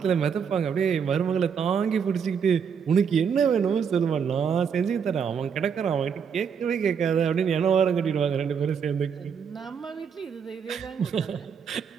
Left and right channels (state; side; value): quieter; left; 6.9 dB